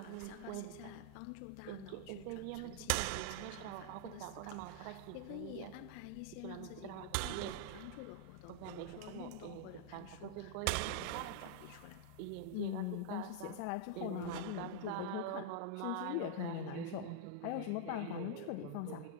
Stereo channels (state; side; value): different; both; correlation -0.01